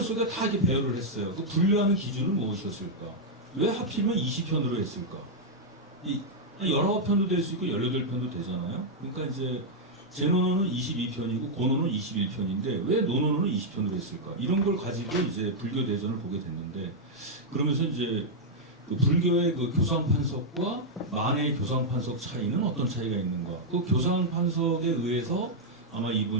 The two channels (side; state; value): both; normal; correlation -0.04